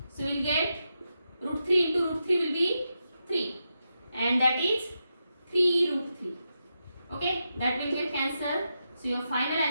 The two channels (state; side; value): inverted; both; correlation -0.86